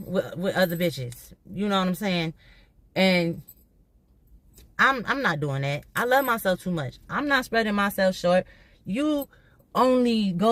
with other bitches. You know what I'm saying? And I'm not doing that. I love myself too much. I'm not spreading myself short. You only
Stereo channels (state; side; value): identical; both; correlation 1.00